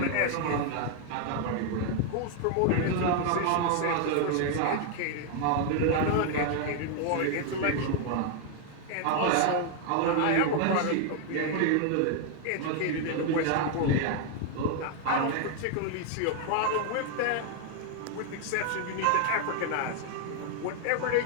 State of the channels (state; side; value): different; both; correlation 0.00